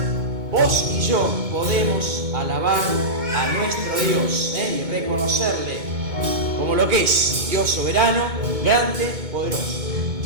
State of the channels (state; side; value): late; left; 2.2 ms